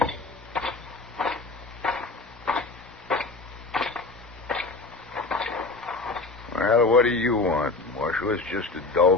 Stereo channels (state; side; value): quieter; right; 3.6 dB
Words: Well, what do you want, Marshal? It's just a